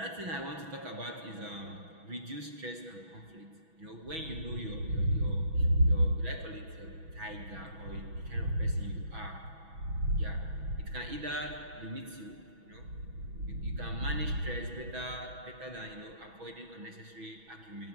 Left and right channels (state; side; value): late; left; 6.1 ms